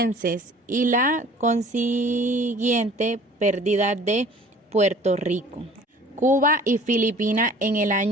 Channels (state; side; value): normal; both; correlation 0.49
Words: y la consiguiente pérdida de Puerto Rico, Cuba y Filipinas en el